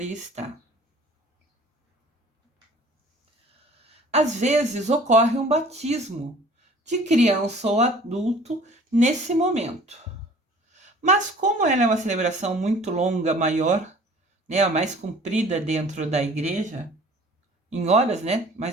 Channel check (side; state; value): both; normal; correlation 0.49